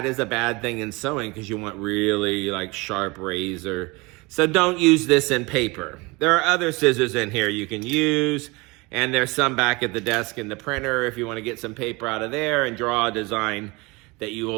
is a bad thing in sewing because you want really like sharp razor. So don't use this in paper. There are other scissors in here you can use. And there's some back at the desk in the printer if you want to get some paper out of there and draw a design that you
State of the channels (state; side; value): quieter; left; 25.2 dB